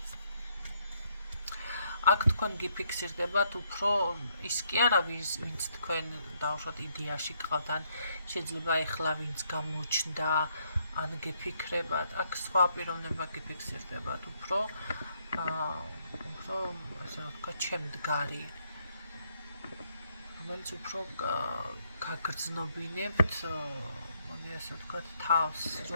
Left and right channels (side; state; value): both; inverted; correlation -0.73